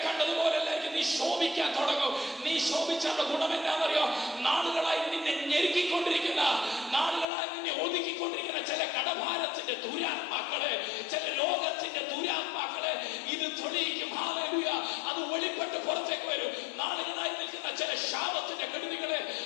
കണ്ടതുപോലെല്ലായിരിക്കും നീ ശോഭിക്കാൻ തുടങ്ങും. നീ ശോഭിച്ചുള്ള ഗുണം എന്നാണെന്നറിയോ? നാളുകളായി നിന്നെ ഞെരുക്കിക്കൊണ്ടിരിക്കുന്ന, നാളുകളായി നിന്നെ ഒതുക്കിക്കൊണ്ടിരിക്കുന്ന ചില കടഭാരത്തിന്റെ ദുരാത്മാക്കളെ, ചില രോഗത്തിന്റെ ദുരാത്മാക്കളെ ഇത് തെളിയിക്കും. ഹല്ലേലൂയ. അത് വെളിപ്പെട്ട് പുറത്തേക്ക് വരും. നാളുകളായി നിൽക്കുന്ന ചില ശാപത്തിന്റെ കെടുതികളെ,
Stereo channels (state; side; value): drops out; right; at 7.2 s